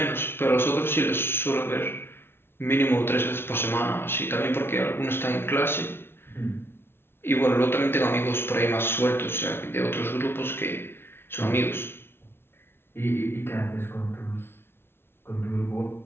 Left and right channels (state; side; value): late; right; 0.11 ms